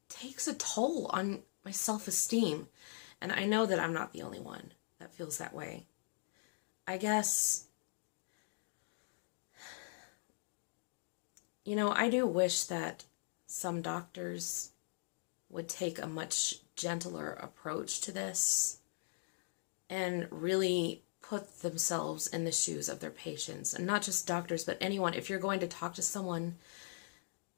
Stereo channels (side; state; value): right; silent; digital silence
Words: takes a toll on my self-esteem. And I know that I'm not the only one that feels that way. I guess, I do wish that some doctors would take a much gentler approach to this and really put themselves in the shoes of their patients. And not just doctors, but anyone. If you're going to talk to someone